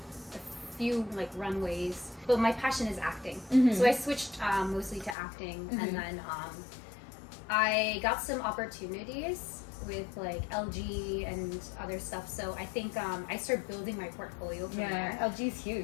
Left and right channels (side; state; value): right; drops out; at 5.2 s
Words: a few like runways. But my passion is acting. So I switched mostly to acting. And then I got some opportunities with like LG and other stuff. So I think I started building my portfolio from there. LG's